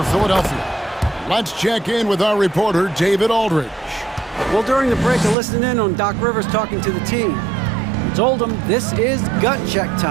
Philadelphia. Let's check in with our reporter, David Aldridge. Well, during the break, I listened in on Doc Rivers talking to the team. He told them this is gut check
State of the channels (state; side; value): drops out; left; at 5.4 s